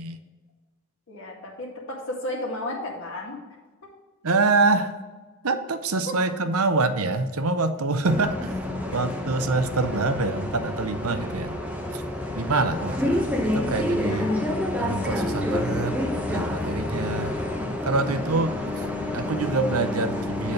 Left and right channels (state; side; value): normal; both; correlation 0.24